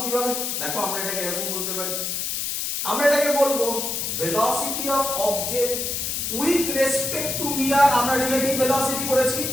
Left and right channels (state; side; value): noise; left; hiss, 2 dB below the sound